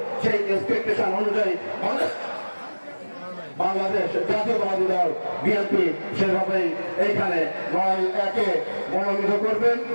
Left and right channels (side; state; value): both; inverted; correlation -1.00